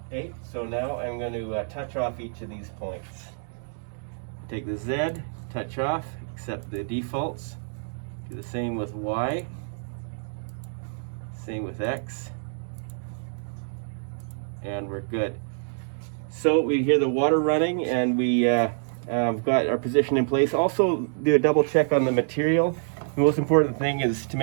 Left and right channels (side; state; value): left; silent; digital silence